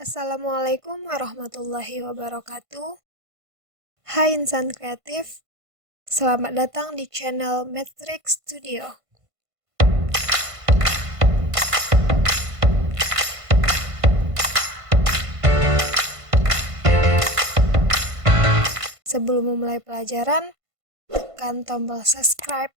Assalamualaikum warahmatullahi wabarakatuh. Hai insan kreatif, selamat datang di channel Matrix Studio. Sebelum memulai pelajaran, tekan tombol subscribe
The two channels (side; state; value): left; late; 1.5 ms